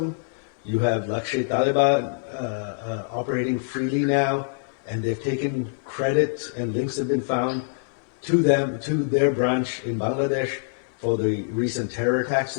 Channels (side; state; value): right; silent; digital silence